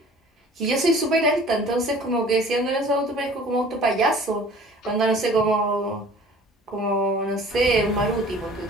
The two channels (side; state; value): both; normal; correlation 0.48